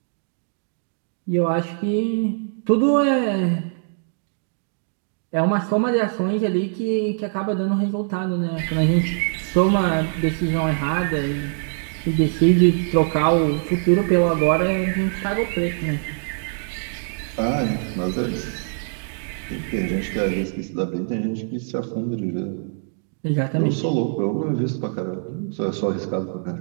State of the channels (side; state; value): left; silent; digital silence